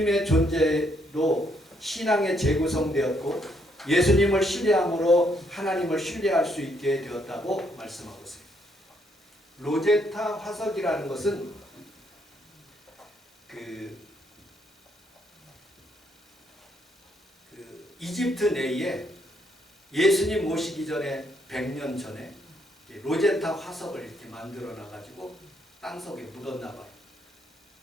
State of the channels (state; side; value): normal; both; correlation 0.72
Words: 존재로 신앙에 재구성되었고 예수님을 신뢰함으로 하나님을 신뢰할 수 있게 되었다고 말씀하고 있어요. 로제타 화석이라는 것은 이집트 내에 예수님 오시기 전에 100년 전에 로제타 화석을 이렇게 만들어 놔가지고 땅속에 묻었나 봐요.